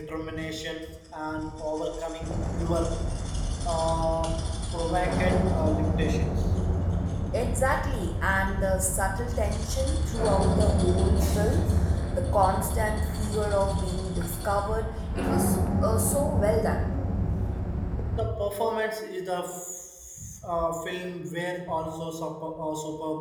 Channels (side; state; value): both; identical; correlation 1.00